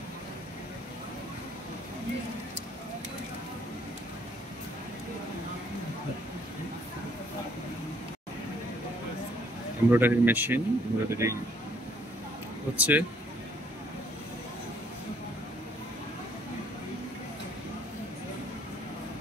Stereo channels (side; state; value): both; normal; correlation 0.65